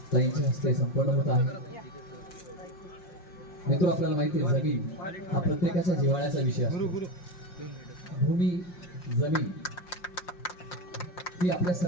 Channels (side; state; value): right; late; 5.6 ms